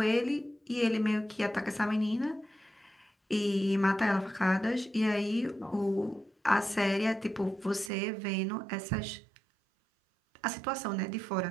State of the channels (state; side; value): drops out; left; at 7.9 s